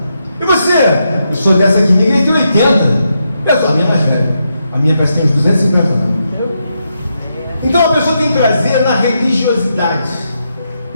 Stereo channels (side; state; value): both; inverted; correlation -0.82